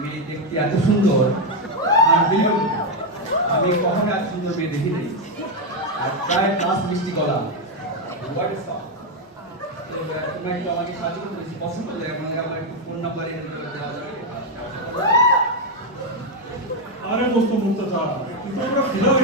মেয়ে দেখতে এত সুন্দর, আমি কখনো এত সুন্দর মেয়ে দেখি নাই। আর প্রায় ক্লাস মিষ্টি গলা, তোমরা একটু আমাকে সাহায্য করতে বেশি পছন্দ করে, আমার একটু ফোন নাম্বার দেওয়া যাবে? আরে দোস্ত মুক্তা, কিন্তু আমরা ফিরা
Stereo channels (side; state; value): both; normal; correlation 0.04